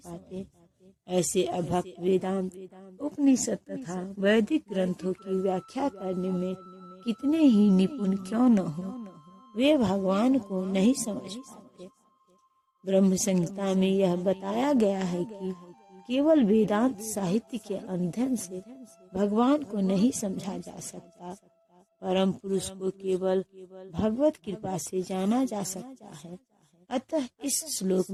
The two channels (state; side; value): identical; both; correlation 1.00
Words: ऐसे अभक्त वेदांत, उपनिषद तथा वैदिक ग्रंथों की व्याख्या करने में कितने ही निपुण क्यों न हो, वे भगवान को नहीं समझ पाते। ब्रह्म संहिता में यह बताया गया है कि केवल वेदांत साहित्य के अध्ययन से भगवान को नहीं समझा जा सकता। परम पुरुष को केवल भगवत कृपा से जाना जा सकता है। अतः इस श्लोक